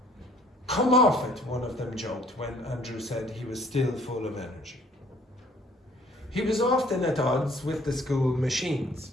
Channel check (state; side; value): normal; both; correlation 0.58